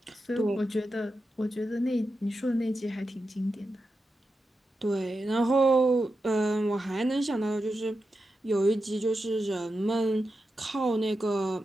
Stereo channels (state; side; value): normal; both; correlation 0.89